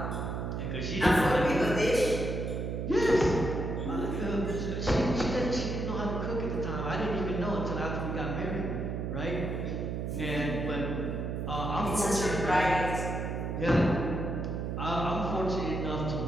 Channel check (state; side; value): noise; right; hum, 2 dB below the sound